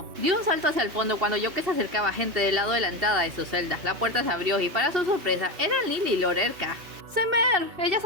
Dio un salto hacia el fondo cuando oyó que se acercaba gente del lado de la entrada de su celda. La puerta se abrió y para su sorpresa eran Lily y Lorelka. ¡Semer! Ella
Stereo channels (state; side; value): late; left; 2.7 ms